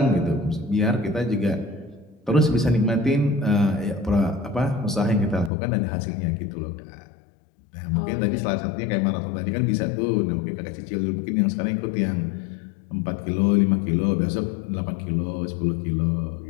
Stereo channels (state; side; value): drops out; right; at 5.5 s